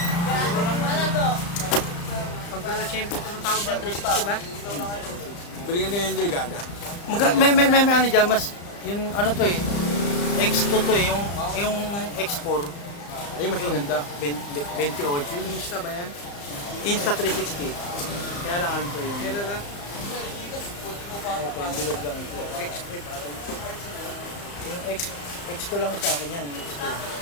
Pagkala siyempre ito ng tawag dyan, 360 ba? Balikan ka yung enjoy, gaga. May ano dyan, mas, yung ano to eh, X2 to eh, yung X4. Ay, mas maganda. 28. Yung Insta ba yan? Insta 360. Kaya lang ano to yung... Kaya na? Ito, yung bilog lang ito. X3 ba? Yung X2 lang sa akin yan. X2.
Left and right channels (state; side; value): late; right; 35 ms